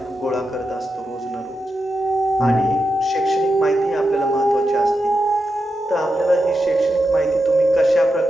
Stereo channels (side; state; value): both; normal; correlation 0.88